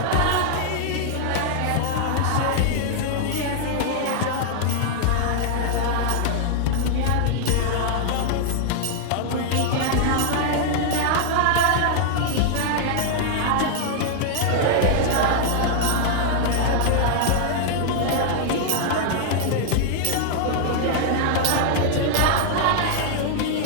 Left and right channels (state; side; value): different; both; correlation -0.01